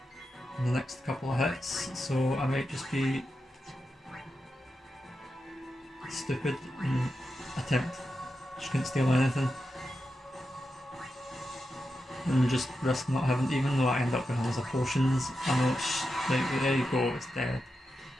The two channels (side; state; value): both; normal; correlation 0.89